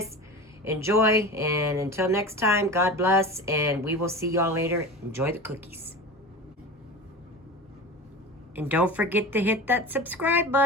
Enjoy, and until next time, God bless, and we will see y'all later. Enjoy the cookies. And don't forget to hit that subscribe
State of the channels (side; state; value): both; normal; correlation 0.31